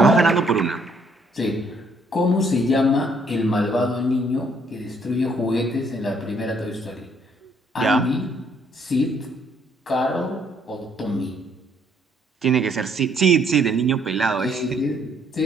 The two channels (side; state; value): both; normal; correlation 0.67